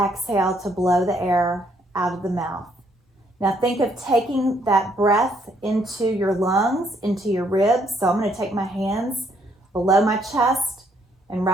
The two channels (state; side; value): normal; both; correlation 0.70